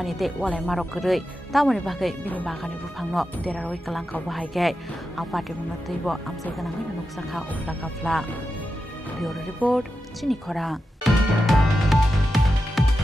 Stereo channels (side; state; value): both; normal; correlation 0.90